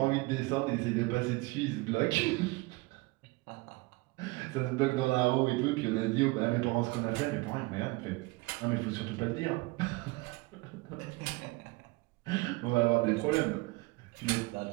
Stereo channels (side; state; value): left; quieter; 24.1 dB